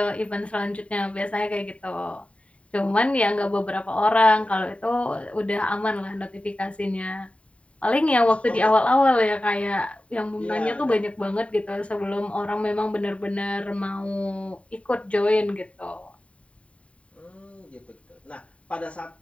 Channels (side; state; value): right; late; 0.064 ms